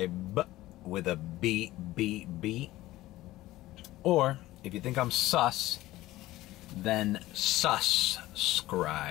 with a B. Or, if you think I'm sus, then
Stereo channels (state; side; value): quieter; right; 16.7 dB